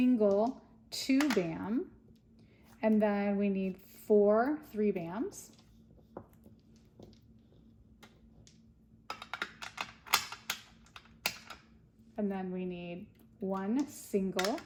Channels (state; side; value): identical; both; correlation 1.00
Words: 2 BAM. And then we need 4 3 BAMs. And then we need 1 single